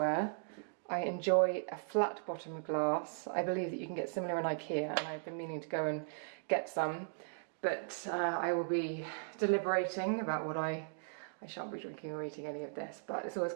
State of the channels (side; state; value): left; silent; digital silence